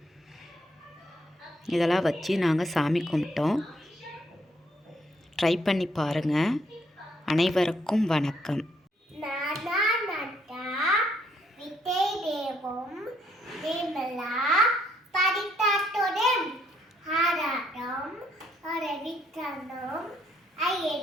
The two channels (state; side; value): normal; both; correlation 0.71